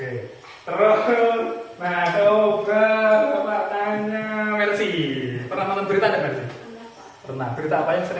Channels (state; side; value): identical; both; correlation 1.00